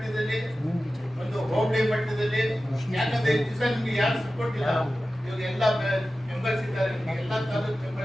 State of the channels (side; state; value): both; normal; correlation 0.95